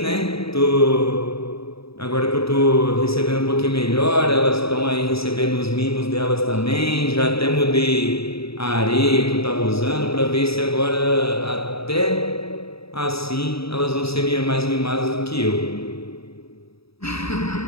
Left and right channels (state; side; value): late; right; 0.77 ms